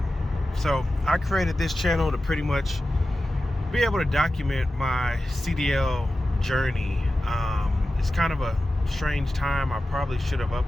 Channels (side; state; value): both; normal; correlation 0.94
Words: So, I created this channel to pretty much be able to document my CDL journey. It's kind of a strange time. I probably should have